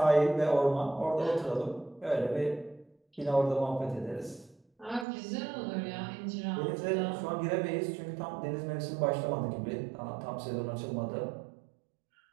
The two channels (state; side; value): drops out; left; at 5.1 s